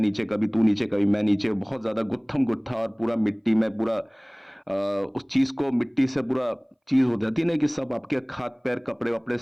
कभी तू नीचे कभी मैं नीचे, बहुत ज्यादा गुत्थम गुत्था और पूरा मिट्टी में पूरा उस चीज को मिट्टी से पूरा चीज हो जाती है ना कि सब आपके हाथ पैर कपड़े वपड़े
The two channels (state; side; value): identical; both; correlation 1.00